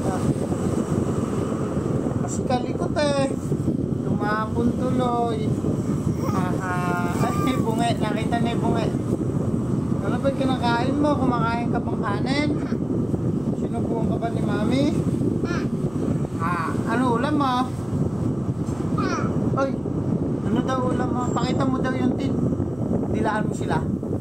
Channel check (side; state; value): right; noise; rumble, 21 dB below the sound